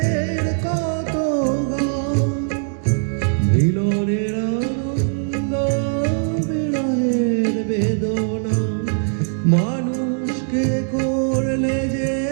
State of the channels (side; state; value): left; silent; digital silence